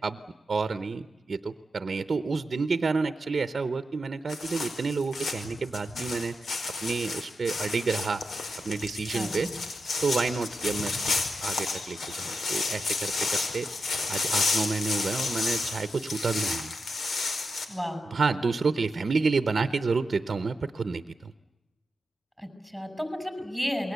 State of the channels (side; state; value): both; normal; correlation 0.88